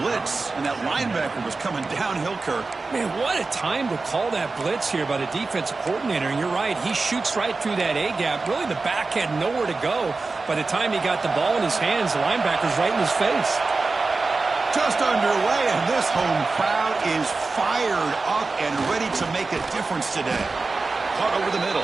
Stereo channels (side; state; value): left; quieter; 3.8 dB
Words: blitz, and that linebacker was coming downhill, Kirk. Man, what a time to call that blitz here by the defensive coordinator. And you're right, he shoots right through that A-gap. Really, the back had nowhere to go. By the time he got the ball in his hands, the linebacker's right in his face. Just underway, and this home crowd is fired up and ready to make a difference today. Caught over the